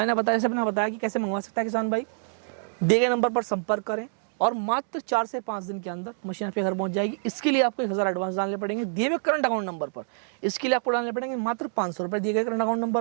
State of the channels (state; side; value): silent; left; digital silence